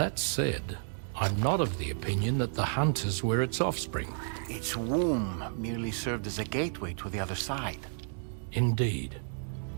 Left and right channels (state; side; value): silent; left; 57 dB below the other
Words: said, I'm not of the opinion that the hunters were its offspring. Its womb merely served as a gateway to the other side. Indeed.